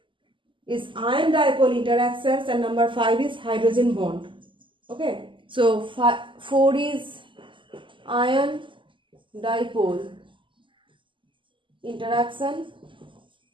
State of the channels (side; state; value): left; late; 0.25 ms